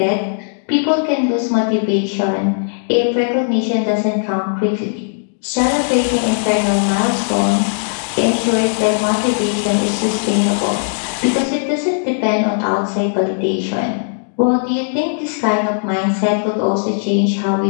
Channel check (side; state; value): right; silent; digital silence